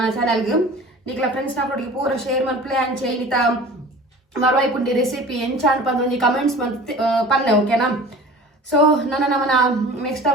ಚಾನಲ್ಗೆ ನಿಕ್ಲ ಫ್ರೆಂಡ್ಸ್ ನಾಕೊಟ್ಟಿಗೆ ಪೂರ ಶೇರ್ ಮನ್ಪ್ಲೆ ಅಂಚೆ ಇನ್ನಿತ ಮರವಾಯಿ ಪುಂಡಿ ರೆಸಿಪಿ ಎಂಚ ಅನ್ಪಂದು ಒಂದು ಕಮೆಂಟ್ಸ್ ಮಂತ್ ಪನ್ನೆ ಓಕೆನಾ. ಸೊ ನಮ್ಮನ ನೆಕ್ಸ್ಟ್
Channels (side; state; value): both; normal; correlation 0.41